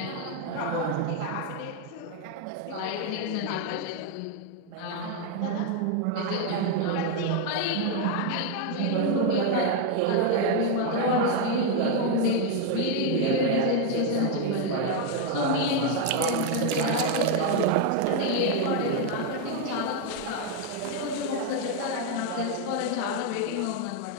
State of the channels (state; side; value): different; both; correlation 0.01